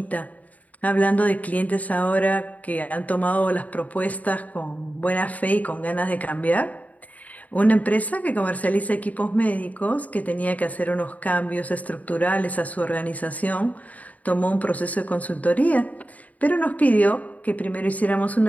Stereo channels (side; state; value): right; late; 0.073 ms